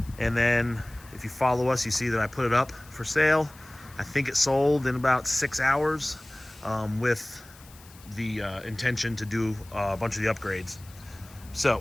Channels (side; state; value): left; noise; hiss, 23 dB below the sound